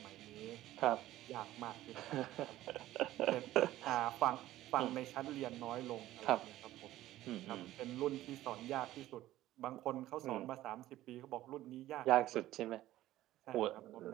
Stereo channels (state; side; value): quieter; left; 14.9 dB